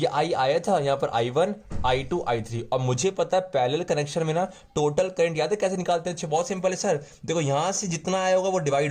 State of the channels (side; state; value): both; identical; correlation 1.00